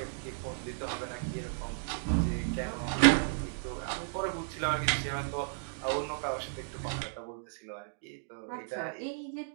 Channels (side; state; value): left; silent; digital silence